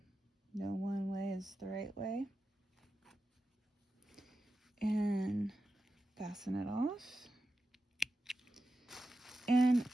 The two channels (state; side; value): normal; both; correlation 0.91